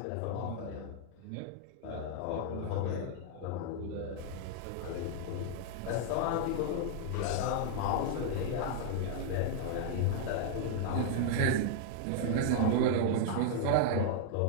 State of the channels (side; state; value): both; different; correlation -0.01